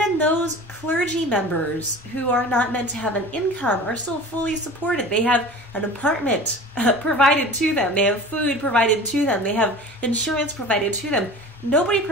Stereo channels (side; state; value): both; normal; correlation 0.38